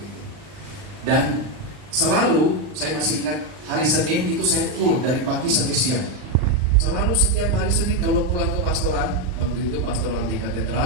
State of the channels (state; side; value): late; left; 40 ms